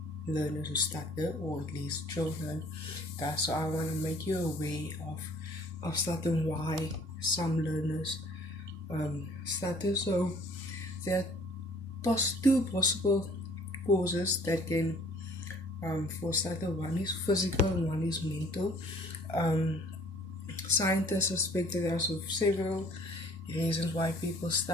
learners who stutter, or at least children. So I want to make you aware of stutter and why some learners stutter. So there are two possible causes that can for stutter. One is physical and one is mental. Um, Scientists suspect that there are several reasons why people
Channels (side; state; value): both; normal; correlation 0.55